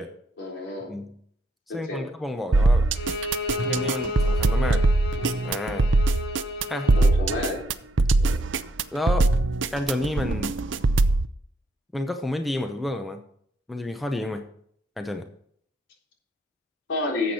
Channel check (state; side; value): normal; both; correlation 0.75